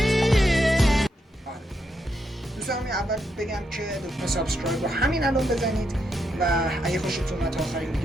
دوستان اول بگم که لطفا سابسکرایب رو همین الان بزنید و اگه خوشتون اومد تا آخرین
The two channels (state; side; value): normal; both; correlation 0.80